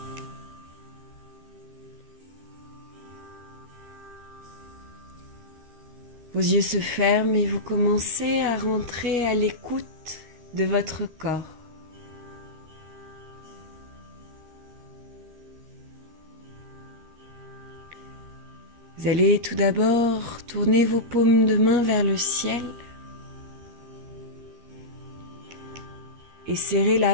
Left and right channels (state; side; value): late; left; 13 ms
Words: Vos yeux se ferment et vous commencez à rentrer à l'écoute de votre corps. Vous allez tout d'abord tourner vos paumes de main vers le ciel et serrer